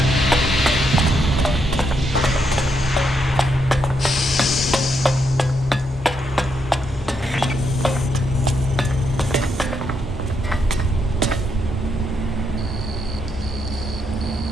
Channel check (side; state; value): both; normal; correlation 0.78